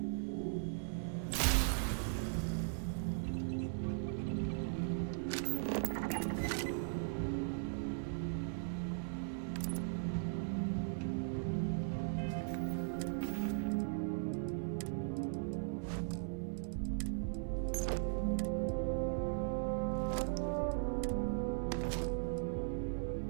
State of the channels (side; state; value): left; silent; 52 dB below the other